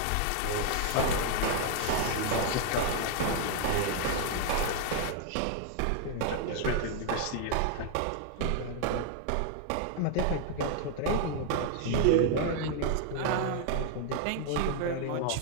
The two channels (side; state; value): both; different; correlation 0.00